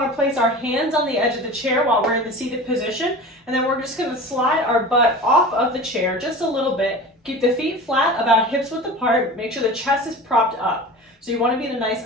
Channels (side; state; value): both; normal; correlation 0.35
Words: to place our hands on the edge of the chair while we're in the seated position. And then we're just going to slide our butt off of the chair just a little bit. Keep the feet flat, about hips width apart. Make sure the chest is propped up. So you want to be in a nice